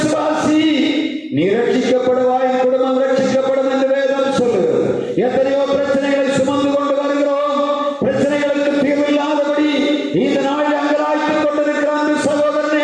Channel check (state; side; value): identical; both; correlation 1.00